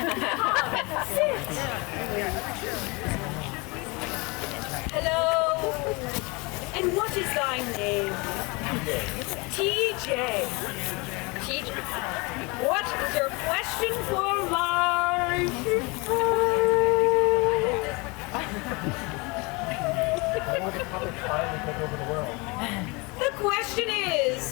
Sit. Hello. And what is thy name? TJ. TJ. What is your question for life? The question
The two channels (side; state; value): right; quieter; 27.2 dB